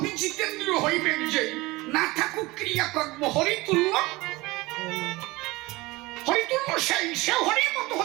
জিতেন্দ্র হইবেন যে না থাকুক ক্রিয়াকর্ম হরিতুল্য। হরিতুল্য সে হরির মতো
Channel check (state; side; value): quieter; left; 21.3 dB